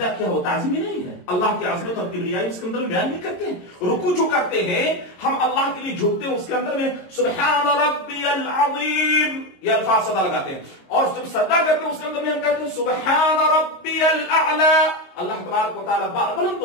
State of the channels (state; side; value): late; right; 22 ms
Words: کیا ہو؟ تعظیمی نہیں ہے، اللہ کی عظمت اور کبریائی اس کے اندر بیان نہیں کرتے ہیں۔ رکوع جو کرتے ہیں ہم اللہ کے لیے جھکتے ہیں، اس کے اندر میں سبحان ربی العظیم یہ الفاظ صدا لگاتے ہیں، اور جب سجدہ کرتے ہیں اس کے اندر میں ہم کہتے ہیں سبحان ربی الاعلی۔ اللہ تبارک و تعالیٰ بلند